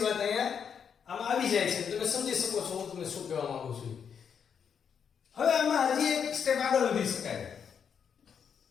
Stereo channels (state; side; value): quieter; right; 7.3 dB